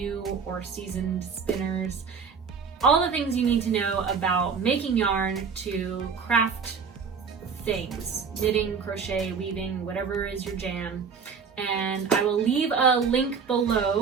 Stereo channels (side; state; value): left; quieter; 5.8 dB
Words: or seasoned spinners. All the things you need to know about making yarn to craft things, knitting, crochet, weaving, whatever is your jam. And I will leave a link